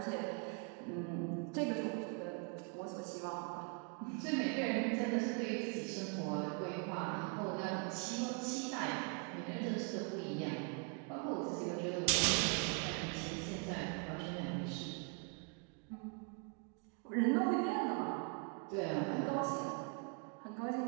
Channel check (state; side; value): quieter; left; 37.0 dB